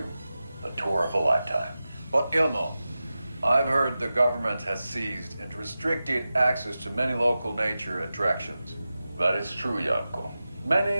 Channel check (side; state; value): both; inverted; correlation -0.94